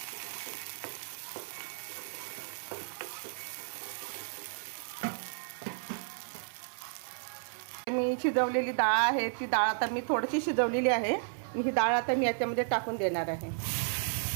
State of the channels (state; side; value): silent; left; 56 dB below the other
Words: मी शिजवलेली डाळ आहे ती डाळ आता मी थोडीशी शिजवलेली आहे. ही डाळ आता मी याच्यामध्ये टाकून देणार आहे.